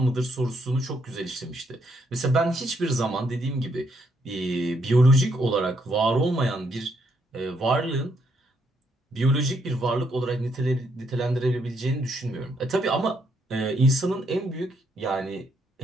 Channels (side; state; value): both; normal; correlation 0.74